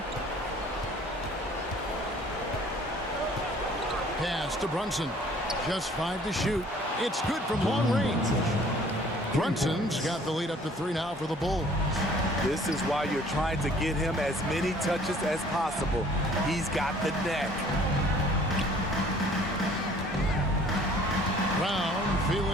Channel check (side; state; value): both; normal; correlation 0.54